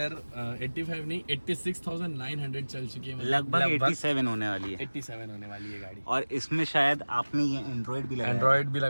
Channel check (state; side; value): inverted; both; correlation -1.00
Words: 85 नहीं 86,900 चल चुकी है। लगभग 87 होने वाली है। 87 होने वाली है गाड़ी। और इसमें शायद आपने ये एंड्रॉयड भी